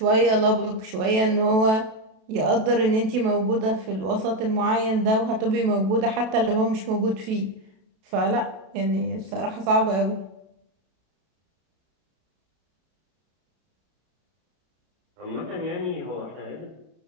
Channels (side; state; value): left; late; 32 ms